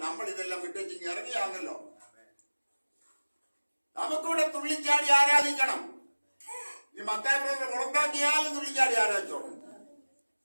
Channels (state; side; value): inverted; both; correlation -1.00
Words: നമ്മൾ ഇതെല്ലാം വിട്ടേച്ച് ഇറങ്ങിയാണല്ലോ. നമുക്കിവിടെ തുള്ളിച്ചാടി ആരാധിക്കണം. ഈ മത്തായി പുറത്താക്കിയാലും തുള്ളിച്ചാടി ആരാധിച്ചോണം.